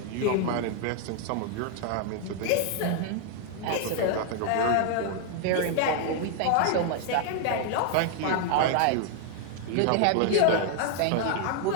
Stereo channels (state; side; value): different; both; correlation 0.00